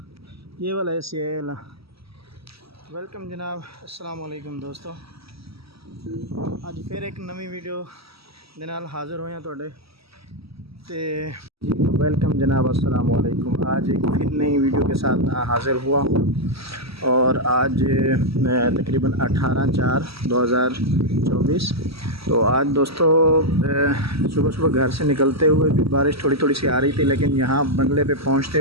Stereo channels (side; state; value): left; late; 0.76 ms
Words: ये वाला ऐसे है। वेलकम जनाब, अस्सलाम वालेकुम दोस्तों। अज फिर एक नवी वीडियो दे नाल हाज़र होया तुहाडे ते वेलकम जनाब, अस्सलाम वालेकुम। आज एक फिर नई वीडियो के साथ हाज़िर हुआ और आज तकरीबन 18/4/2024। तो आज दोस्तों सुबह सुबह घर से निकलते हुए भी बारिश थोड़ी थोड़ी सी आ रही थी, लेकिन यहाँ बंगले पे पहुँचते